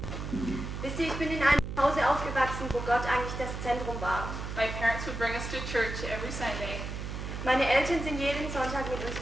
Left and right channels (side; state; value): right; noise; hum, 6 dB below the sound